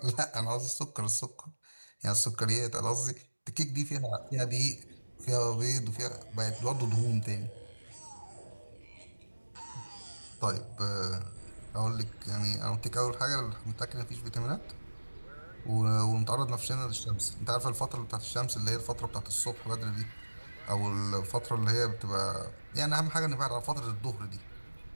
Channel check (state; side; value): inverted; both; correlation -1.00